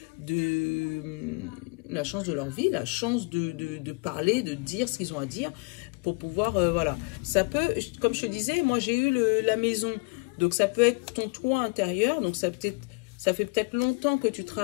la chance de leur vie, la chance de parler, de dire ce qu'ils ont à dire, pour pouvoir, voilà. Ça peut, comme je te disais, moi j'ai eu la maison, donc ça peut être ton toit intérieur, donc ça fait peut-être longtemps que tu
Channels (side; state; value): right; quieter; 29.8 dB